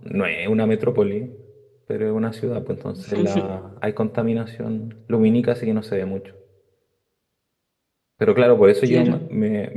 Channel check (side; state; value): both; identical; correlation 1.00